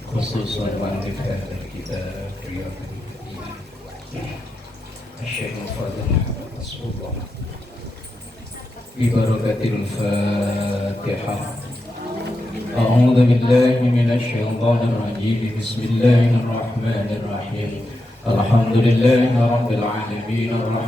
khususan wa al-kitab riyadul Syekh Fadil Rasulullah Bibarakatil Fatihah. A'udzu billahi minasy syaithanir rajim. Bismillahirrahmanir rahim. Alhamdulillahi rabbil alamin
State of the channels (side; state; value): both; normal; correlation 0.87